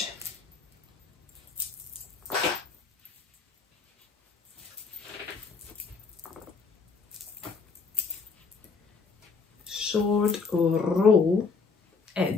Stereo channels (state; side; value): quieter; right; 4.7 dB